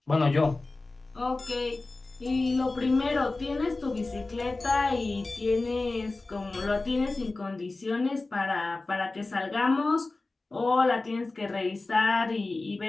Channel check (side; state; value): right; quieter; 3.3 dB